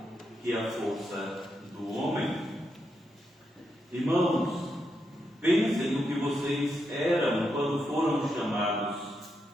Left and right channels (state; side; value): normal; both; correlation 0.83